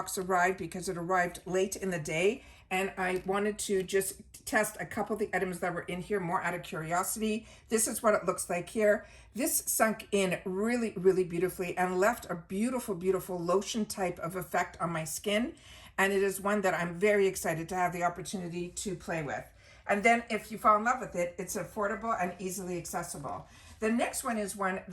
arrived because it arrived late in the day. And I wanted to just test a couple of the items that were in here more out of curiosity. This is what it looks like here. This sunk in really, really beautifully and left a beautiful, beautiful lotion type of effect on my skin. And it is one that I'm very excited to have the opportunity to play with. And then if you fall in love with it, it's affordable and easily accessible. The next one is one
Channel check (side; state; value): both; identical; correlation 1.00